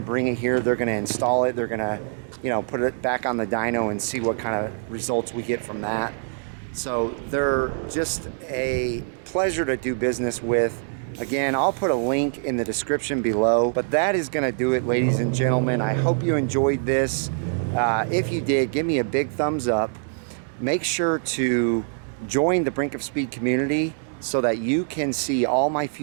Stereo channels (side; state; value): left; silent; digital silence